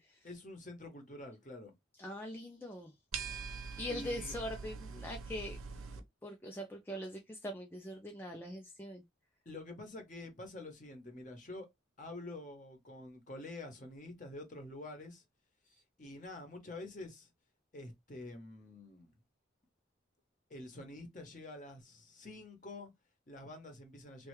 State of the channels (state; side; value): normal; both; correlation 0.53